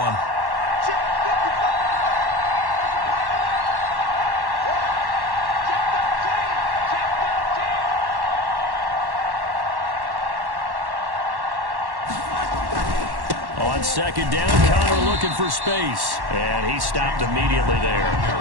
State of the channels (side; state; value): left; late; 1.1 ms